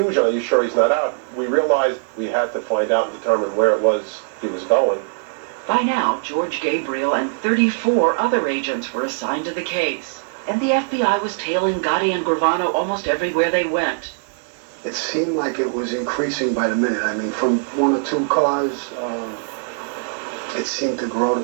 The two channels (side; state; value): left; silent; digital silence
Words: Are you sure he's not out? We realized we had to find out and determine where it was he was going. By now, George Gabriel and 34 other agents were assigned to the case, and the FBI was tailing Gotti and Gravano almost everywhere they went. It seemed like it was increasing by the minute. I mean, from 1 or 2 cars, it seemed to grow to